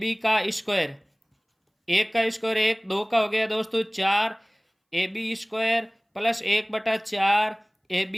का स्क्वायर। 1 का स्क्वायर 1, 2 का हो गया दोस्तों 4 AB square plus 1/4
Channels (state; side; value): identical; both; correlation 1.00